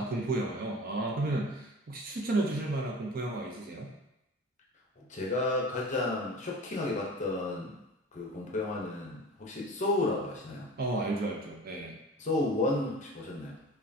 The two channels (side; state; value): both; normal; correlation 0.39